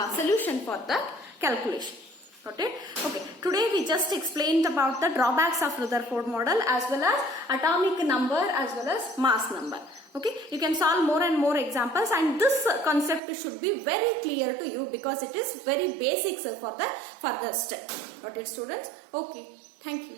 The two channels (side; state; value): left; drops out; at 13.2 s